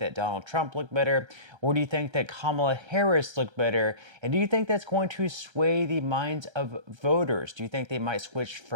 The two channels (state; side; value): late; left; 1.3 ms